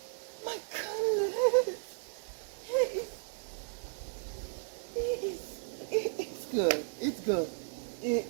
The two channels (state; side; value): silent; left; 55 dB below the other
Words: my goodness. It's good. It's good. It